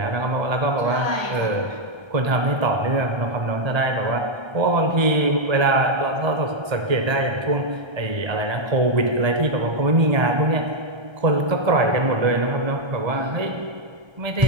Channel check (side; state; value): left; late; 1.3 ms